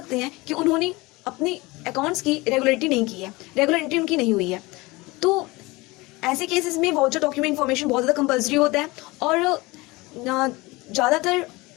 हैं कि उन्होंने अपनी अकाउंट्स की रेगुलरिटी नहीं की है, रेगुलर एंट्री उनकी नहीं हुई है। तो ऐसे केसेस में वाउचर डॉक्यूमेंट इन्फॉर्मेशन बहुत ज़्यादा कंपल्सरी होता है, और ज़्यादातर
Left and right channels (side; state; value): right; quieter; 22.6 dB